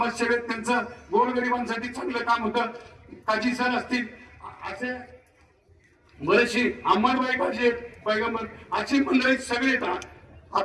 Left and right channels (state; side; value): identical; both; correlation 1.00